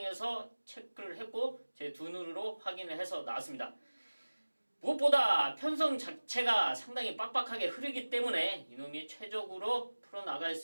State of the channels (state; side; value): inverted; both; correlation -1.00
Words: 체크를 했고 제 두 눈으로 확인을 해서 나왔습니다. 무엇보다 편성 자체가 상당히 빡빡하게 흐르기 때문에 이놈이 최적으로 풀어나갈